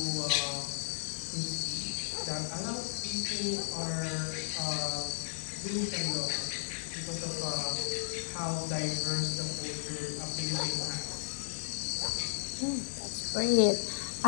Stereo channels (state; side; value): silent; right; digital silence